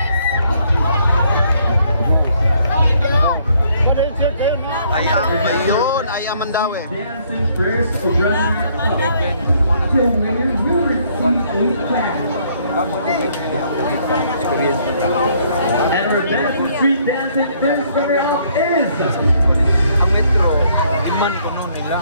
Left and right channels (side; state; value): both; inverted; correlation -0.66